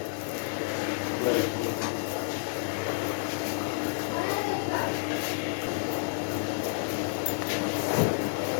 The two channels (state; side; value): silent; right; 58 dB below the other